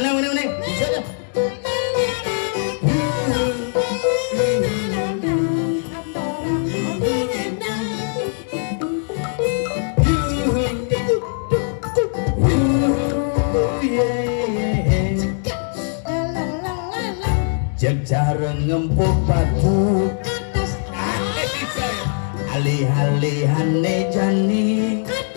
Neng. Bisa dah. Jarang ngempuk batu Atas alih-alihane jani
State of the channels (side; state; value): right; silent; digital silence